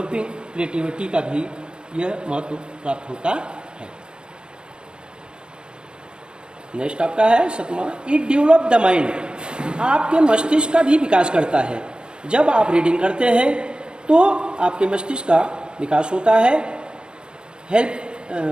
क्रिएटिविटी का भी यह महत्व प्राप्त होता है। नेक्स्ट आपका है सतमा, इट डेवलप द माइंड। आपके मस्तिष्क का भी विकास करता है। जब आप रीडिंग करते हैं तो आपके मस्तिष्क का विकास होता है।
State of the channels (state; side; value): late; left; 0.050 ms